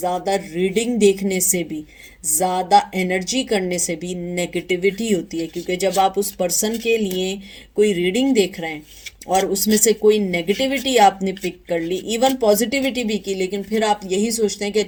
रीडिंग देखने से भी, ज़्यादा एनर्जी करने से भी नेगेटिविटी होती है, क्योंकि जब आप उस पर्सन के लिए कोई रीडिंग देख रहे हैं और उसमें से कोई नेगेटिविटी आपने पिक कर ली, इवन पॉजिटिविटी भी की, लेकिन फिर आप यही सोचते हैं कि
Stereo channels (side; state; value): both; identical; correlation 1.00